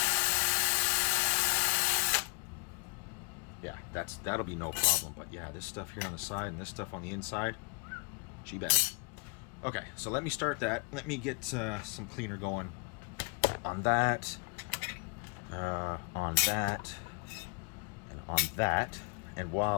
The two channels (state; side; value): quieter; right; 33.8 dB